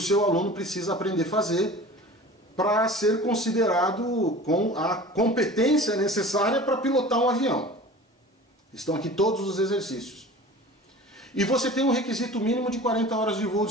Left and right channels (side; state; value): both; normal; correlation 0.40